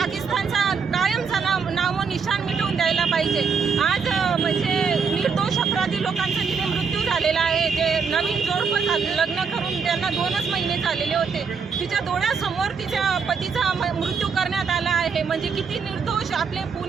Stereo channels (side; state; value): left; quieter; 5.7 dB